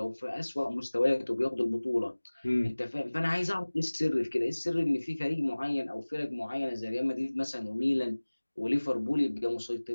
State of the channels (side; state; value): both; inverted; correlation -1.00